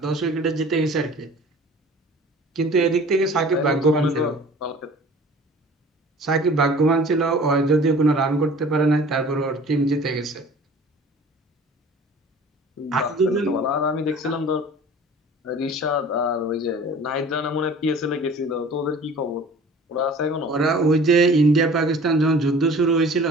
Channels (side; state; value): both; normal; correlation 0.46